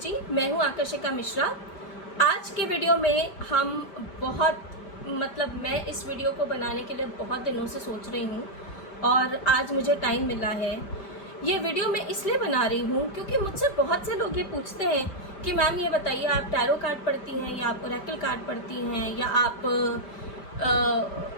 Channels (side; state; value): right; late; 5.1 ms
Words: मैं हूं आकर्षिका मिश्रा। आज के वीडियो में हम मैं इस वीडियो को बनाने के लिए बहुत दिनों से सोच रही हूं और आज मुझे टाइम मिला है। ये वीडियो मैं इसलिए बना रही हूं क्योंकि मुझसे बहुत से लोग ये पूछते हैं कि मैम ये बताइए, आप टैरो कार्ड पढ़ती हैं या आप ओरेकल कार्ड पढ़ती हैं या आप